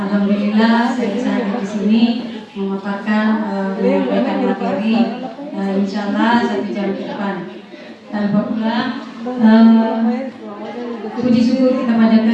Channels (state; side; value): identical; both; correlation 1.00